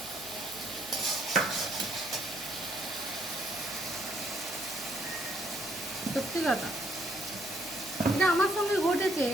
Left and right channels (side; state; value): left; noise; hum, 21 dB below the sound